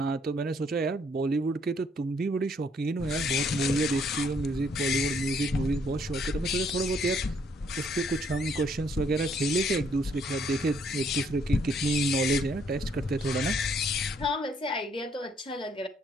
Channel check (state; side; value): normal; both; correlation 0.68